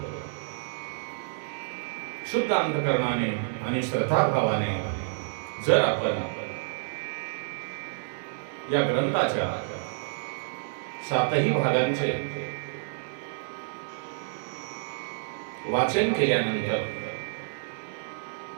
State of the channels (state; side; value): silent; left; digital silence